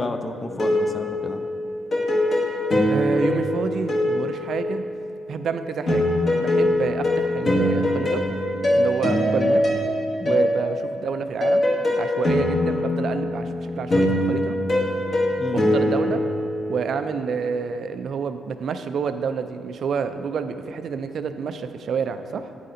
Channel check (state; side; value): normal; both; correlation 0.82